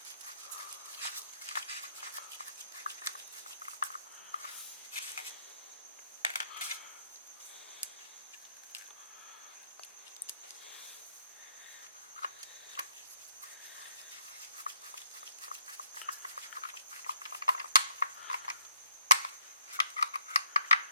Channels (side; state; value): both; inverted; correlation -0.69